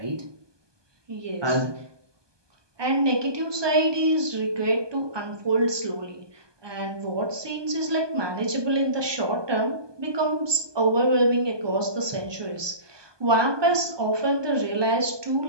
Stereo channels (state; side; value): late; left; 1.2 ms